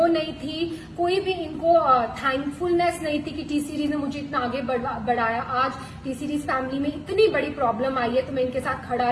नहीं थी, कोई भी इनको थैंकफुलनेस नहीं थी कि टी सीरीज ने मुझे इतना आगे बढ़ाया। आज टी सीरीज फैमिली में इतनी बड़ी प्रॉब्लम आई है तो मैं इनके साथ खड़ा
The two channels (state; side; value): identical; both; correlation 1.00